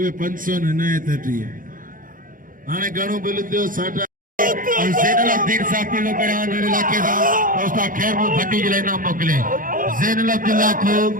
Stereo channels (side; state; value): left; late; 0.40 ms